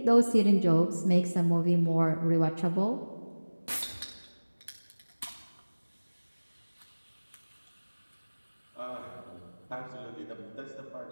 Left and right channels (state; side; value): inverted; both; correlation -1.00